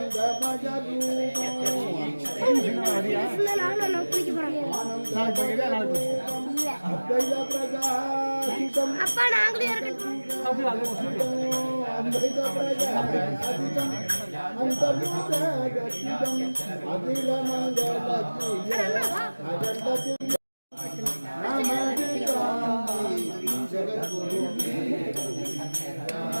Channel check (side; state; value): both; inverted; correlation -1.00